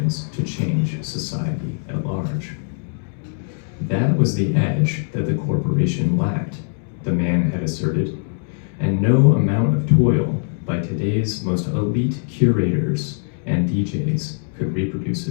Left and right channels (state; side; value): silent; right; digital silence